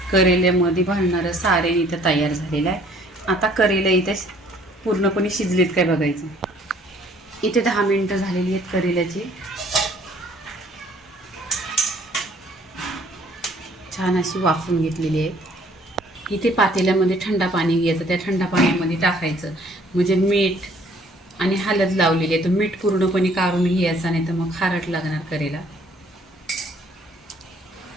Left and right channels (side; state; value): both; normal; correlation 0.59